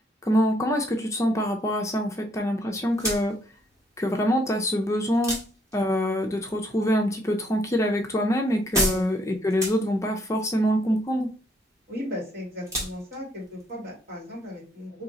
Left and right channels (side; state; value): both; normal; correlation 0.69